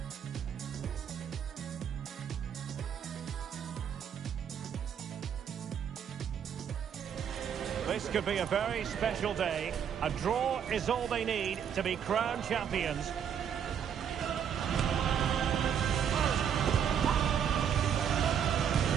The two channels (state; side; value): quieter; left; 8.3 dB